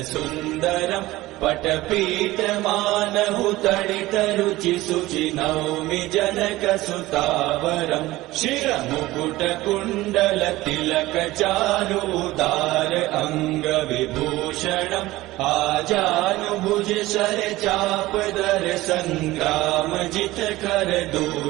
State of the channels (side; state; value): left; quieter; 18.0 dB